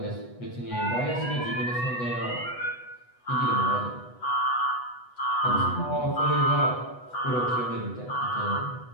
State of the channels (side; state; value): right; late; 8.1 ms